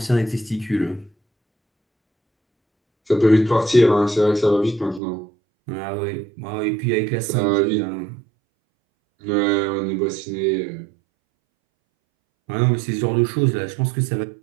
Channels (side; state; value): left; drops out; at 5.0 s